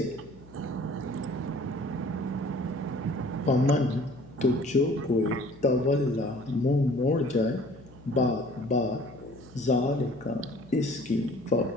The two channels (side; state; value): left; noise; hum, 22 dB below the sound